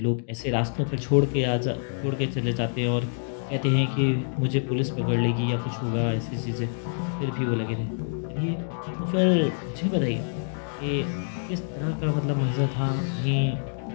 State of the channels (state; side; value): silent; right; digital silence